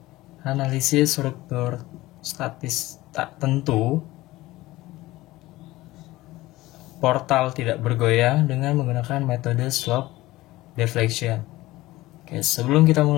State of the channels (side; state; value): right; quieter; 18.1 dB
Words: analisis struktur statis tak tentu portal tidak bergoyang dengan menggunakan metode slope deflection. Oke, sebelum kita